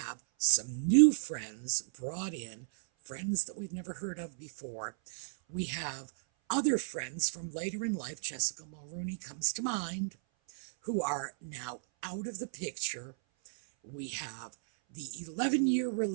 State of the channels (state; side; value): silent; left; 55 dB below the other